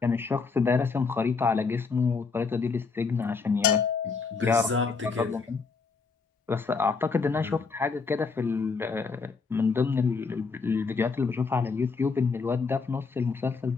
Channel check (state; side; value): quieter; right; 4.8 dB